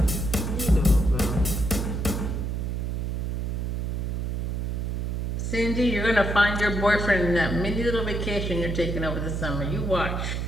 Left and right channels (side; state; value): right; noise; hum, 1 dB below the sound